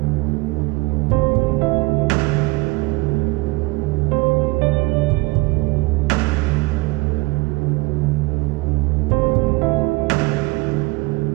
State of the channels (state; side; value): quieter; left; 23.9 dB